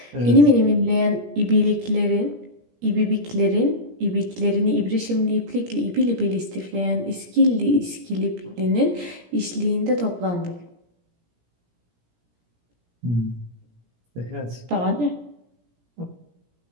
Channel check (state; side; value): late; left; 17 ms